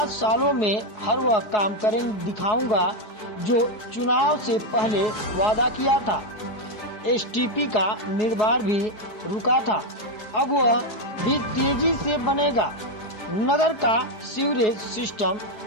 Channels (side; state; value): right; late; 4.7 ms